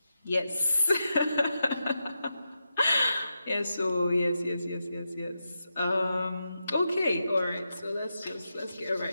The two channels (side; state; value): both; inverted; correlation -0.88